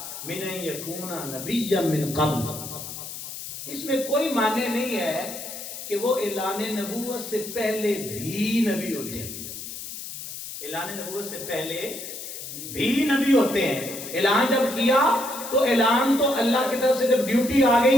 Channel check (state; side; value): noise; left; hiss, 9 dB below the sound